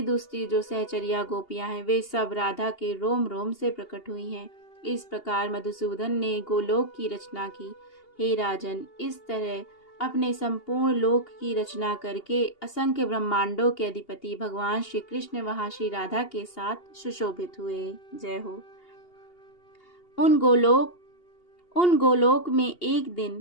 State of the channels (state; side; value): late; right; 2.8 ms